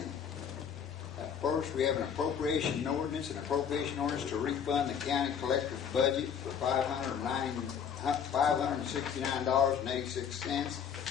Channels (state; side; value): quieter; right; 7.7 dB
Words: First, we have an appropriation ordinance to refund the county collector's budget for